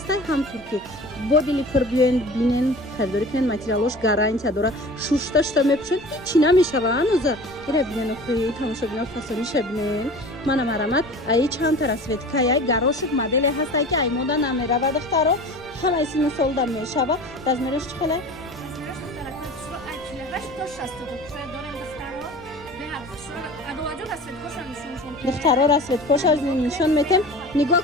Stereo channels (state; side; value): noise; left; rumble, 23 dB below the sound